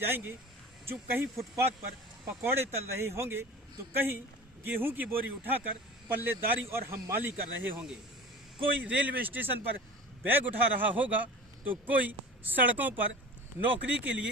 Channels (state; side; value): normal; both; correlation 0.37